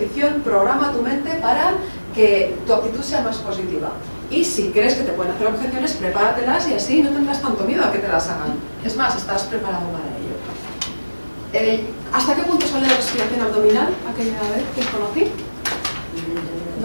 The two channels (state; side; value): inverted; both; correlation -1.00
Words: programa tu mente para que tu actitud sea más positiva. Y si crees que te pueden hacer objeciones, prepáratelas y así no tendrás tanto miedo a que te las hagan. Es más, estás preparado para ello. ¿Hasta qué punto sale la respiración abdominal? Aquella vez que os conocí.